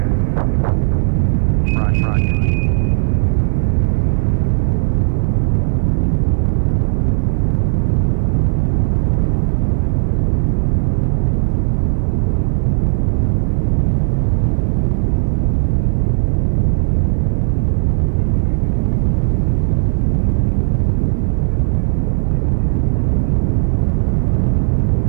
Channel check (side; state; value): left; silent; 57 dB below the other